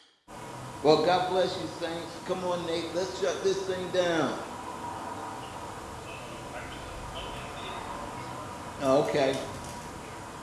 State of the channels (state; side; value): identical; both; correlation 1.00